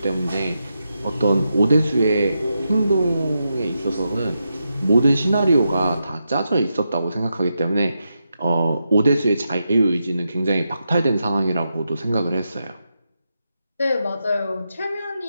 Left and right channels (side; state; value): both; inverted; correlation -0.86